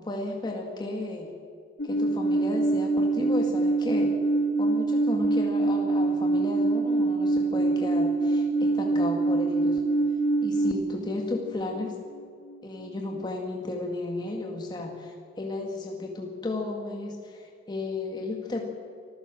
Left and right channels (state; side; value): normal; both; correlation 0.66